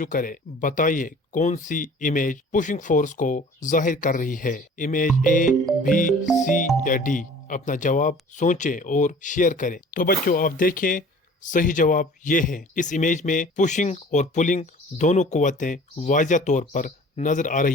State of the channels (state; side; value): normal; both; correlation 0.47